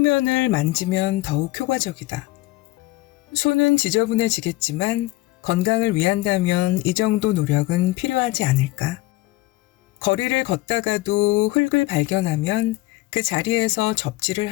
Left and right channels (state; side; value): quieter; right; 19.3 dB